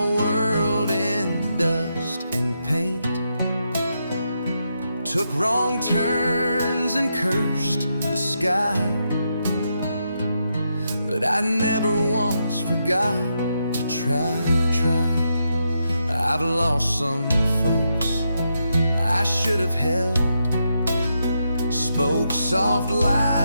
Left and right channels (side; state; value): both; inverted; correlation -0.82